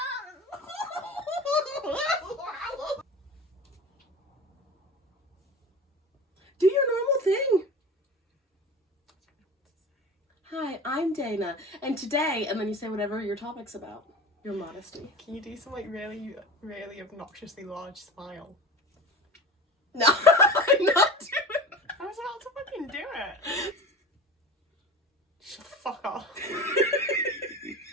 Do your normal thing. Hi, I'm Dana, and today, and then you say whatever your topic's about. Your modesty. Can you do some like really, really obnoxiously large smile? No, I'm not doing it. I was about to fucking do it. Shut the fuck off.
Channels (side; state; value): both; normal; correlation 0.33